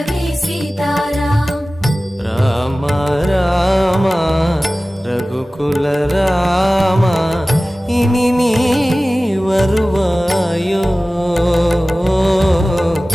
சீதாராம். ராம ராம ரகுகுல ராம இனி நீ வருவாயோ.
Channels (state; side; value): normal; both; correlation 0.97